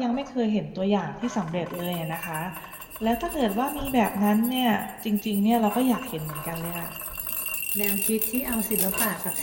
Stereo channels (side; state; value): both; identical; correlation 1.00